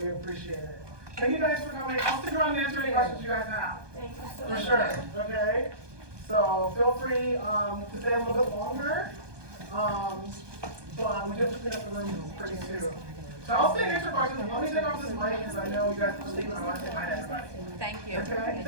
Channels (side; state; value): left; late; 1.2 ms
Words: appreciate it. Thank you guys for coming. I'll stick around and answer any questions you guys have. Thank you so For much. sure. Okay. So feel free to stay a little bit longer. But we just have to clean up the room pretty soon. So I'll stay and answer questions. Let me take off this mic because I know you guys are leaving. I want to say hi to everybody. Thank you. Okay.